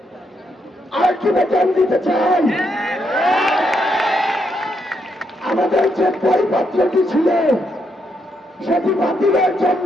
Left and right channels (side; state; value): both; normal; correlation 0.78